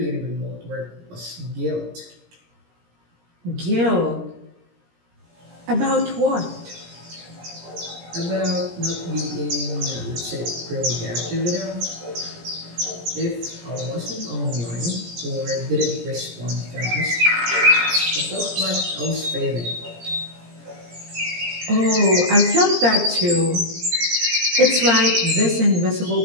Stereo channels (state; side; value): late; left; 17 ms